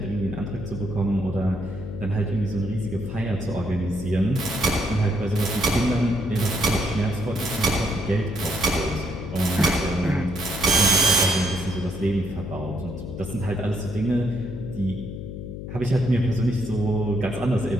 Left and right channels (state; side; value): noise; left; hum, 8 dB below the sound